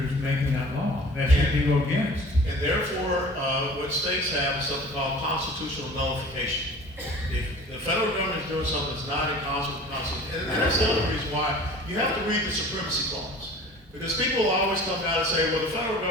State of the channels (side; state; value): both; normal; correlation 0.43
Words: making that law. That should be go against. And therefore, what states have is something called constitutional nullification. If the federal government is doing something that's not in concert with the Constitution, and that's the other reason why you have to read the Supremacy Clause. Because people always come out and say, well, the federal